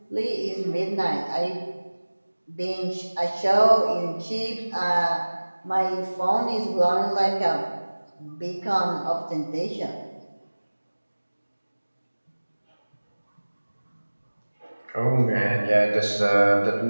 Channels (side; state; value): both; inverted; correlation -1.00